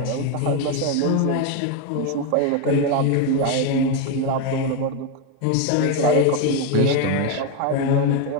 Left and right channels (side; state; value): both; different; correlation 0.02